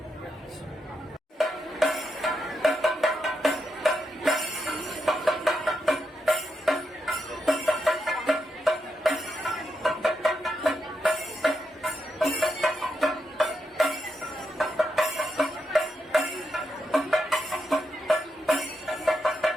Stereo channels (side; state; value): both; normal; correlation 0.84